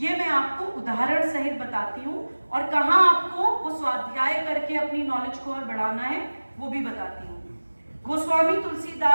मैं आपको उदाहरण सहित बताती हूँ, और कहाँ आपको वो स्वाध्याय करके अपनी नॉलेज को और बढ़ाना है वो भी बताती हूँ। गोस्वामी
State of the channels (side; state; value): both; inverted; correlation -1.00